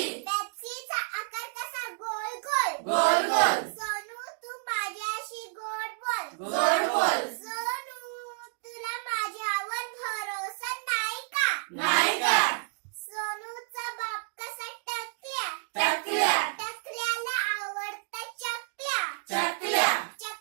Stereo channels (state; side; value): silent; left; digital silence